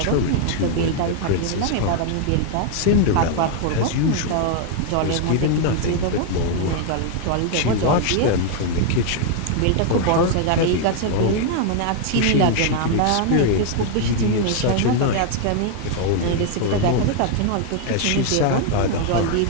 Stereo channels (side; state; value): both; different; correlation 0.00